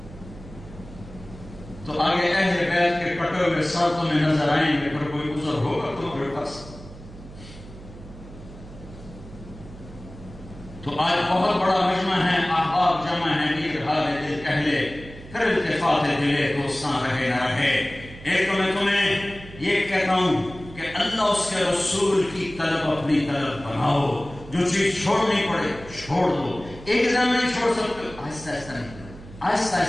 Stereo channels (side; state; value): right; noise; hum, 16 dB below the sound